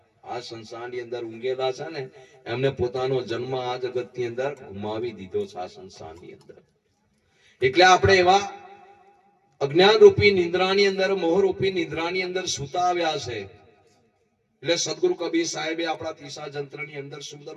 આ સંસારની અંદર ઊંઘેલા છે ને એમને પોતાનો જન્મ આ જગતની અંદર ગુમાવી દીધો છે આ સંસારની અંદર. એટલે આપણે એવા અજ્ઞાન રૂપી નિંદ્રાની અંદર, મોહ રૂપી નિંદ્રાની અંદર સૂતા આવ્યા છે. એટલે સદગુરુ કબીર સાહેબે આપણા તીસા જંત્રની અંદર સુંદર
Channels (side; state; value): both; identical; correlation 1.00